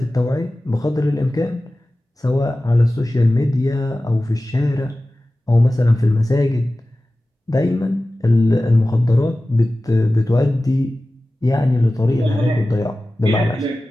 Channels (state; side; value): normal; both; correlation 0.96